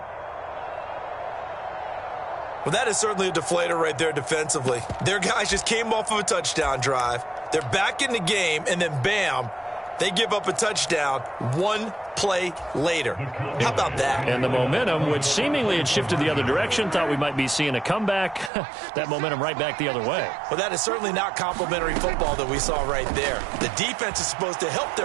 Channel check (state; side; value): drops out; left; at 18.5 s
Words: Well, that is certainly a deflator right there defensively. Their guys just came off of a touchdown drive. They're back in the game, and then bam, they give up a touchdown 1 play later. How about that? And the momentum, which seemingly had shifted the other direction, thought we might be seeing a comeback. That momentum right back the other way. Well, that is certainly not complimentary football that we saw right there. The defense is supposed to help